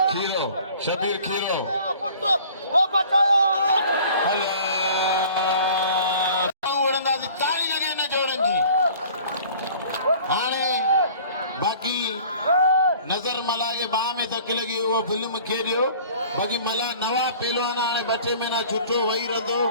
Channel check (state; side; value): inverted; both; correlation -0.49